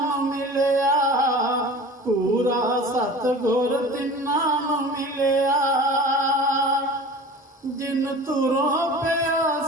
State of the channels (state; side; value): normal; both; correlation 0.39